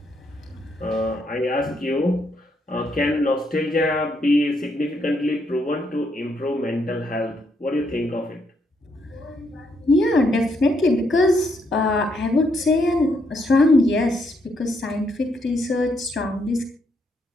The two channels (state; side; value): normal; both; correlation 0.75